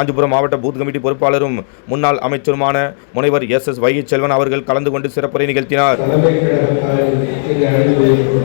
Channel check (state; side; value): silent; right; digital silence